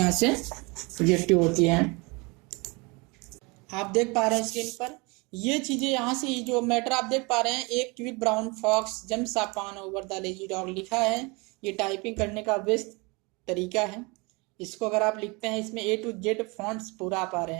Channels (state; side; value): quieter; left; 27.9 dB